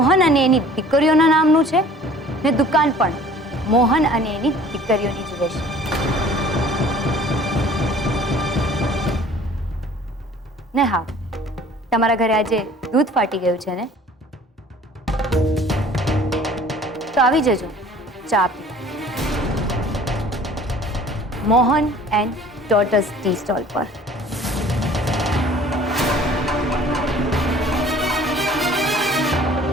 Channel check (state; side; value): normal; both; correlation 0.50